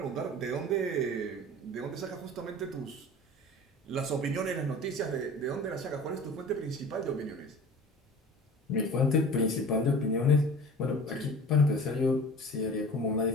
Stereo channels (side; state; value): both; normal; correlation 0.40